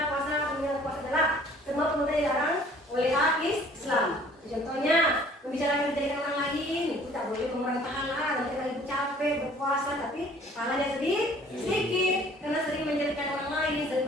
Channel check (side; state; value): both; normal; correlation 0.54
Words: puasa adalah semua pemuda dilarang oleh Islam. Contohnya, membicarakan kejadian orang lain itu tak boleh mengurangi pahala. Nanti kalau ibu capek berpuasa tapi pahalanya sedikit karena sering menjadikan orang lain,